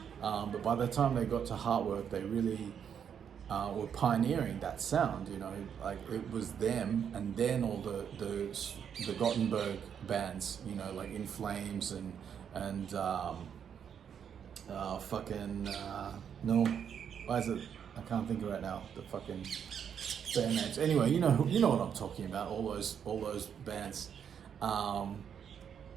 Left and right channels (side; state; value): left; quieter; 8.0 dB